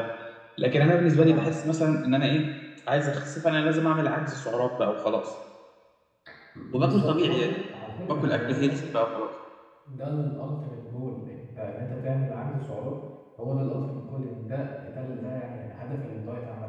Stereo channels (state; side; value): identical; both; correlation 1.00